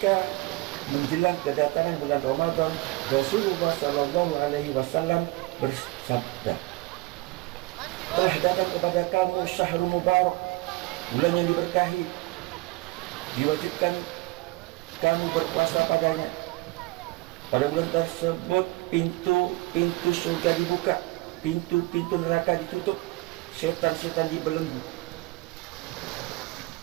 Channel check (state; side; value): quieter; left; 22.6 dB